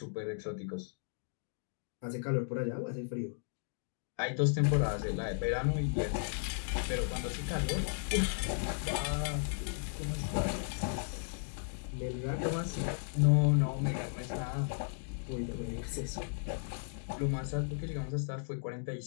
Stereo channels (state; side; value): silent; right; digital silence